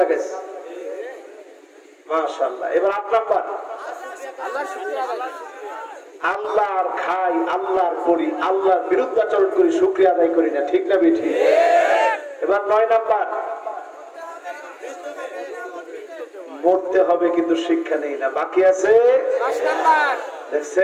লাগাইছে। মাশাআল্লাহ। এবার 8 নাম্বার, আল্লাহর খাই, আল্লাহর করি, আল্লাহর বিরুদ্ধাচরণ করি, শুকরিয়া আদায় করি না। ঠিক না বেঠি? এবার 9 নাম্বার, মরতে হবে কিন্তু শিক্ষা নেই না। বাকি আছে 10 নাম্বার।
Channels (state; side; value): identical; both; correlation 1.00